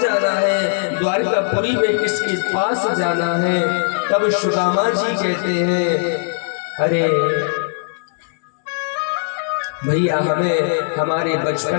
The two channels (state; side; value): silent; right; digital silence